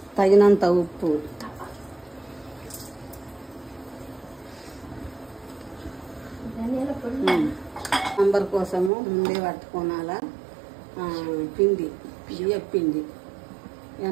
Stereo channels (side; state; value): left; drops out; at 8.9 s